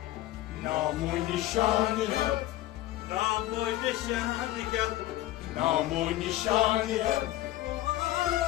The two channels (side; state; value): right; quieter; 15.7 dB